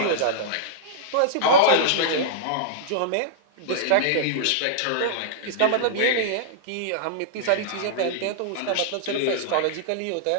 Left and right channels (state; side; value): different; both; correlation -0.02